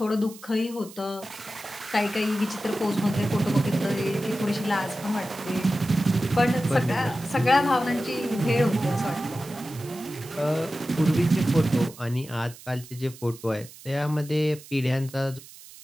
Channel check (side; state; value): right; noise; hiss, 19 dB below the sound